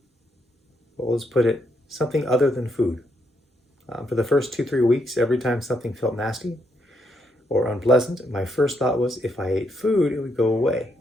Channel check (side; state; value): both; normal; correlation 0.77